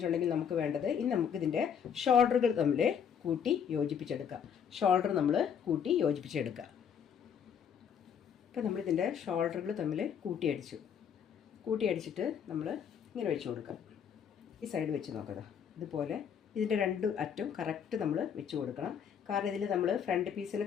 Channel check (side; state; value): right; quieter; 7.8 dB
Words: നമുക്ക് വേണ്ടത്, ഇനി നമുക്കിതിൻ്റെ ഷോൾഡറുകൾ തമ്മിൽ കൂട്ടി യോജിപ്പിച്ചെടുക്കാം. ഷോൾഡർ നമ്മൾ കൂട്ടി യോജിപ്പിച്ചെടുക്കുക. അപ്പോൾ നമ്മളിതിൻ്റെ ഷോൾഡറുകൾ തമ്മിൽ കൂട്ടി അടിച്ചിട്ട് നമ്മൾ ഇങ്ങനെ വെച്ച് കൊടുക്കാം. ഈ സൈഡ് വെച്ച് നോക്കുക. ഇതുപോലെ ഇതിൻ്റെ രണ്ട് അറ്റം കറക്റ്റ് നമ്മൾ വെച്ച് കൊടുക്കണം. കാരണം ഇതിൽ നമ്മൾ ഫ്രണ്ട് പീസിന്